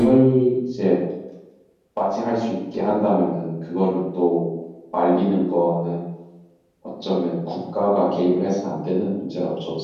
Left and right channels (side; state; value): both; identical; correlation 1.00